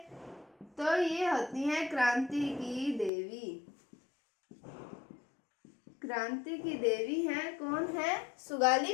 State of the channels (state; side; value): drops out; right; at 3.1 s